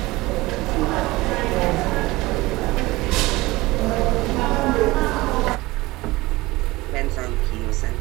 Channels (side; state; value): left; quieter; 20.5 dB